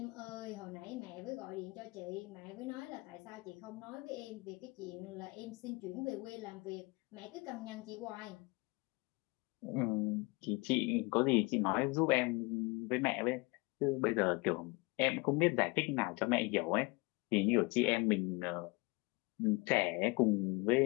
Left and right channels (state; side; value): quieter; right; 26.4 dB